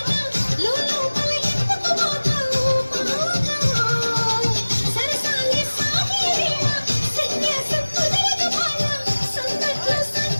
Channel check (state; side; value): inverted; both; correlation -1.00